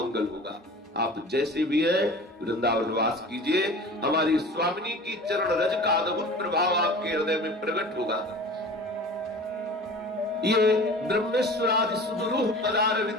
होगा। आप जैसे भी है वृंदावन वास कीजिए, हमारी स्वामिनी की चरण रज का अद्भुत प्रभाव आपके हृदय में प्रकट होगा। ये ब्रह्मेश्वरादि सुदुरूह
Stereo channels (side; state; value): both; normal; correlation 0.39